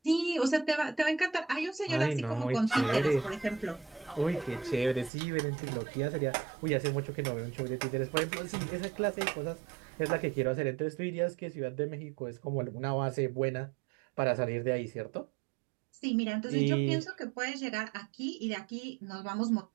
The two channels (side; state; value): left; drops out; at 5.1 s